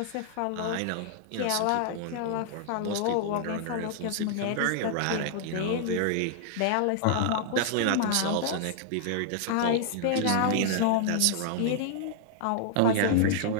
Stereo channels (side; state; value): both; different; correlation -0.01